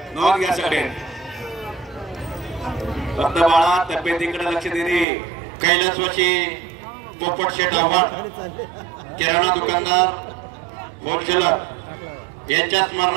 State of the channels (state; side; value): drops out; left; at 5.1 s